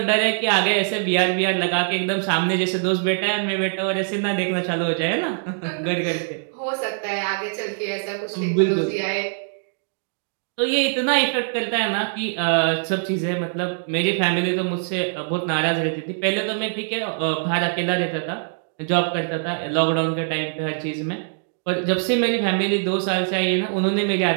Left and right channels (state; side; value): silent; left; digital silence